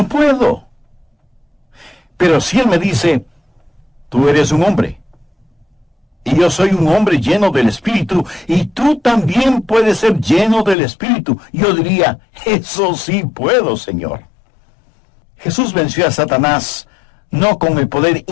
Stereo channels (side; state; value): right; drops out; at 10.8 s